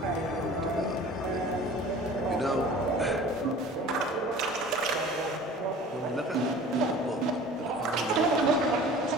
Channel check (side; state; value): both; normal; correlation 0.44